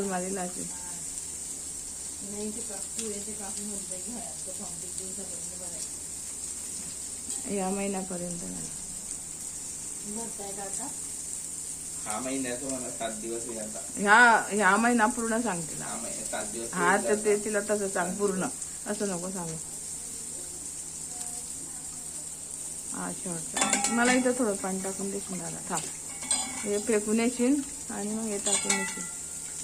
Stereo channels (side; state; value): both; identical; correlation 1.00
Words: मध्ये लाची. या महिन्यापर्यंत नाही. हा महिन्याचं मला 7 दिवस आहे आता. ह्या महिना पूर्ण सांगते ना. हा महिना 7 दिवस. हा तर ते तिला तसं सांग पूर्ण, असं नको सांगू. हा शेवटचं. मला इथं थोडं पाणी टाकून देशील दादा. थांब हे फेकून येशील आणि मग हे टाकून येशील.